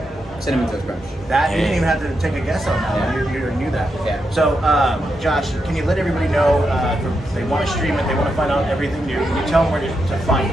Cinnamon Toast Crunch. That you didn't even have to take a guess on that. Yeah. You knew that. Yeah. So, Josh, can you let everybody know if they want to stream it, they want to find out everything new? Can you tell them where to find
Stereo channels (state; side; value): normal; both; correlation 0.84